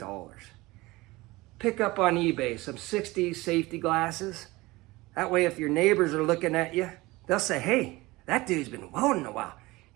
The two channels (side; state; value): left; quieter; 20.9 dB